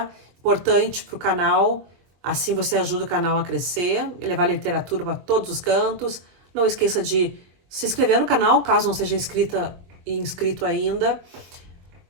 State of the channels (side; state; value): left; late; 22 ms